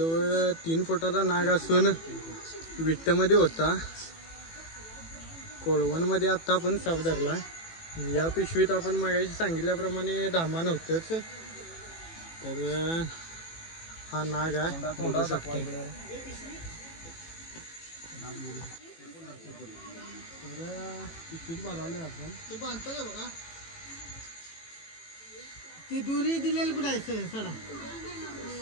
3 फुटाचा नाग असून विट्टमध्ये होता. कोळवणमध्ये आता आपण साप धरलाय. या पिशवीत आपण मागाशी सांगितल्याप्रमाणे धामान होतच. तर हा नाग आहे. बघू शकतो. तर पिशवीत भरवलोय आपण. ते बांधतो बघा. ती दुरी दिलेली कुठं आहे सडा.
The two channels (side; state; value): right; late; 18 ms